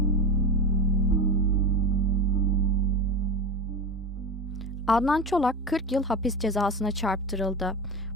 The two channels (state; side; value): normal; both; correlation 0.24